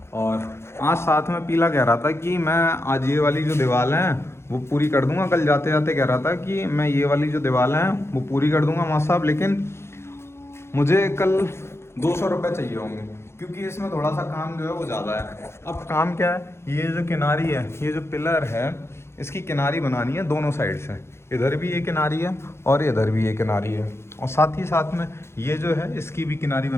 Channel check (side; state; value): right; late; 0.12 ms